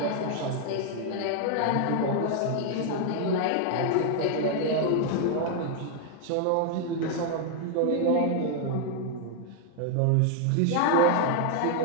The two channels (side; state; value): both; different; correlation 0.00